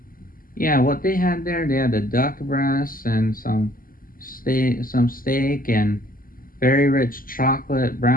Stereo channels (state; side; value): late; right; 0.41 ms